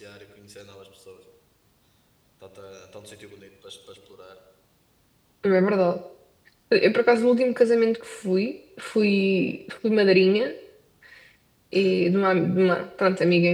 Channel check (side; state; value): both; identical; correlation 1.00